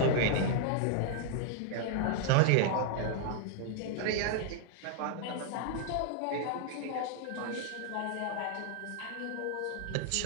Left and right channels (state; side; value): different; both; correlation 0.00